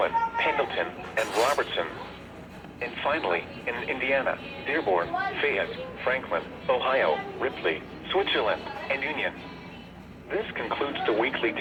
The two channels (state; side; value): identical; both; correlation 1.00